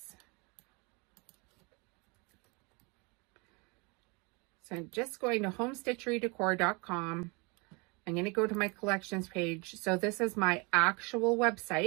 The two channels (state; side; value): quieter; left; 29.5 dB